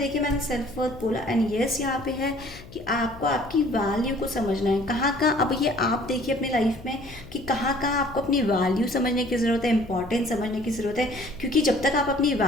मैंने सेल्फ वर्थ बोला, एंड यस यहाँ पे है कि आपको आपकी वैल्यू को समझना है। कहाँ कहाँ अब ये आप देखिए अपनी लाइफ में कि कहाँ कहाँ आपको अपनी वैल्यू समझने की ज़रूरत है, इंपॉर्टेंस समझने की ज़रूरत है। क्योंकि जब तक आप अपनी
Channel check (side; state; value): left; noise; hum, 18 dB below the sound